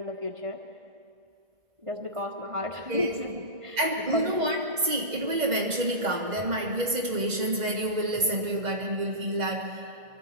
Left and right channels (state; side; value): late; left; 2.0 ms